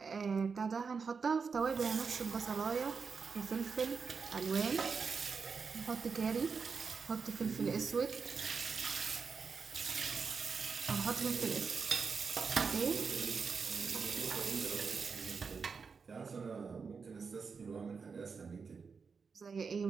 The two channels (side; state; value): left; quieter; 5.4 dB